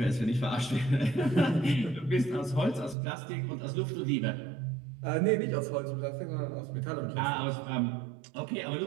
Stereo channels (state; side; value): drops out; left; at 3.0 s